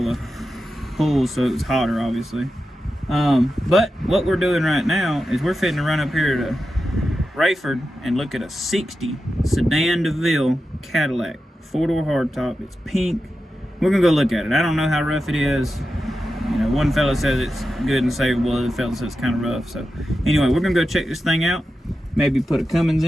of pulls, so it was hotter, obviously. But what we're doing right now is we're fitting to run up here to Rayford and look at a 60 Sedan Deville Cadillac, 4-door hardtop. It's pink. We're gonna go look at it. I don't know how rough it is. You know, one fella says it's good and savable, the other fella says it's kind of rough. So anyway, we're gonna go check this thing out. Maybe put a Cummins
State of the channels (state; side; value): normal; both; correlation 0.90